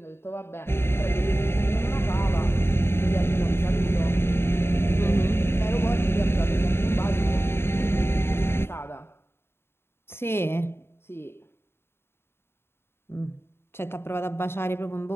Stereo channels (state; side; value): late; right; 0.11 ms